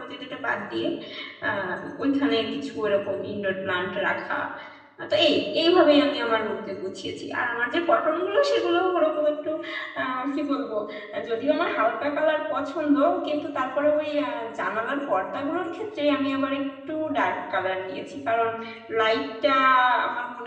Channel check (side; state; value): both; identical; correlation 1.00